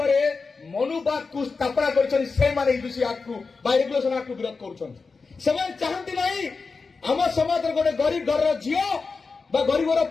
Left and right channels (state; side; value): quieter; right; 4.5 dB